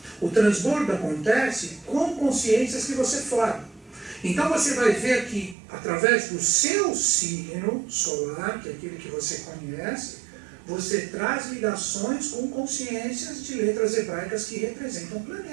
O transbordo acontece com consciências que você forma. Então você vai ver que através do seu signo solar, que é aquele que você conhece, você traz ligações com consciências de letras hebraicas que representam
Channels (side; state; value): left; drops out; at 5.6 s